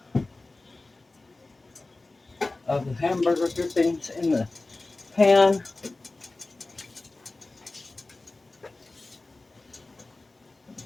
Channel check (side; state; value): right; quieter; 3.2 dB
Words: of the hamburger drippings in the pan.